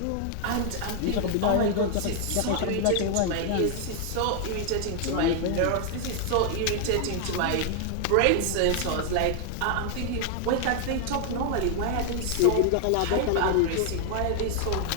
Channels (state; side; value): different; both; correlation 0.00